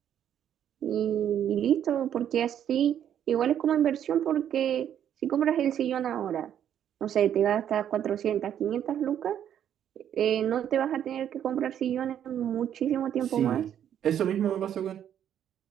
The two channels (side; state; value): left; quieter; 9.8 dB